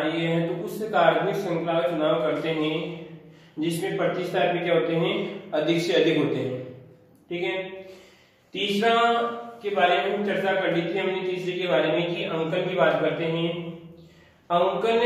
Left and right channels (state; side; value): identical; both; correlation 1.00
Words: है तो उस कार्बनिक श्रृंखला का चुनाव करते हैं जिसमें प्रतिस्थापी क्या होते हैं? अधिक से अधिक होते हैं। ठीक है। तीसरा के बारे में हम चर्चा कर ली थी हमने, तीसरे के बारे में कि अंकन की बात करते हैं। अंकन